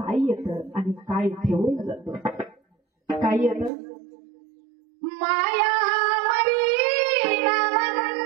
येतं आणि काय ठेवून जातो? काय येतं? माया मरी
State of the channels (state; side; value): drops out; left; at 3.7 s